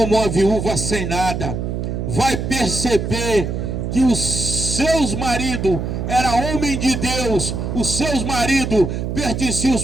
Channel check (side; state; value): right; noise; hum, 3 dB below the sound